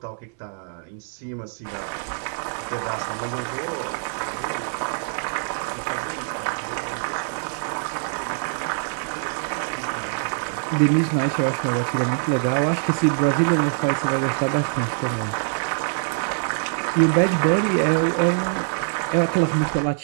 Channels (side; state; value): left; silent; 62 dB below the other